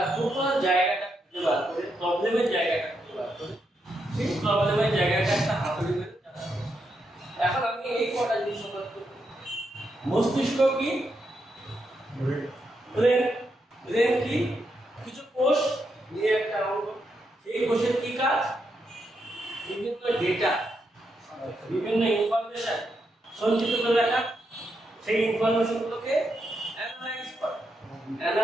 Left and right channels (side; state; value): both; normal; correlation 0.82